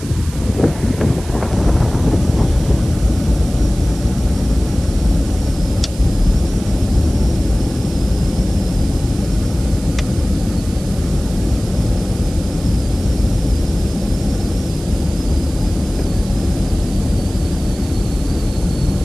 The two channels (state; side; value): noise; right; hiss, 16 dB below the sound